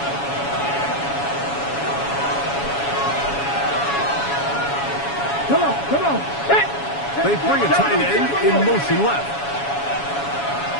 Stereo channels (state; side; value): late; right; 7.1 ms